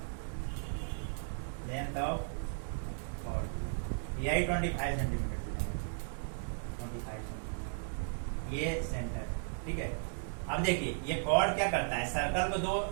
यही 25 सेंटीमीटर 25 सेंटीमीटर ये सेंटर ठीक है। अब देखिए ये कॉर्ड क्या करता है सर्कल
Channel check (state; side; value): silent; left; digital silence